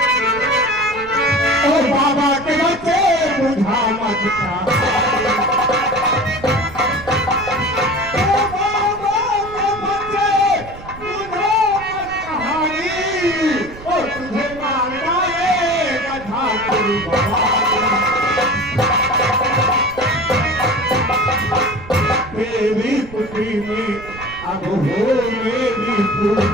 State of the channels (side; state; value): right; noise; rumble, 16 dB below the sound